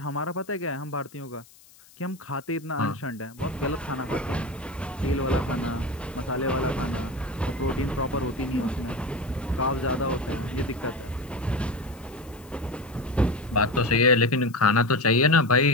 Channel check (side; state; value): left; noise; hiss, 25 dB below the sound